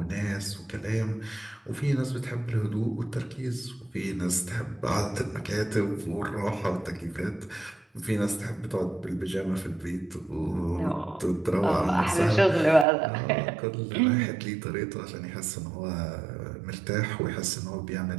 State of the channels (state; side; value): drops out; left; at 12.9 s